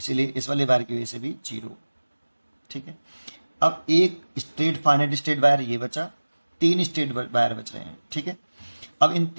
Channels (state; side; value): inverted; both; correlation -1.00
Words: इस वाले वायर की वजह से भी जीरो। ठीक है। अब एक स्ट्रेट फाइनाइट स्ट्रेट वायर ये बचा, 3 स्ट्रेट वायर बच रहे हैं। ठीक है। अब इन